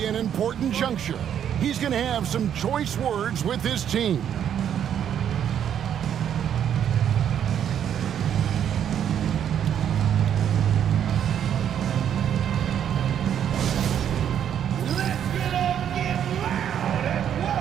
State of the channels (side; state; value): left; quieter; 9.3 dB